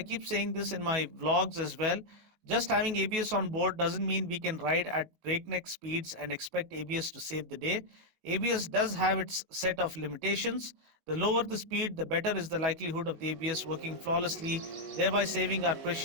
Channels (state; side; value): late; left; 19 ms